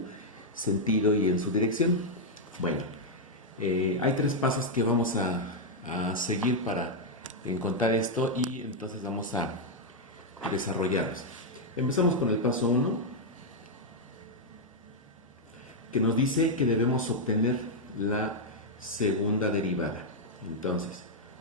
sentido y en su dirección. Bueno, hay tres pasos que vamos a seguir para encontrar esto, y entonces vamos a desarrollarlos. Empezamos con el paso 1, que nos dice que debemos obtener la segunda derivada. Entonces,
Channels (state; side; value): normal; both; correlation -0.02